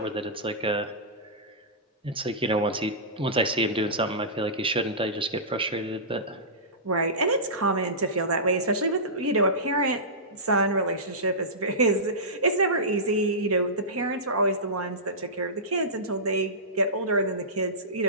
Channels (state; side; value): normal; both; correlation -0.19